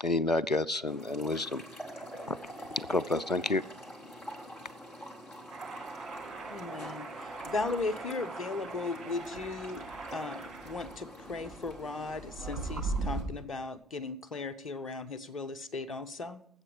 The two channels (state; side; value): normal; both; correlation 0.53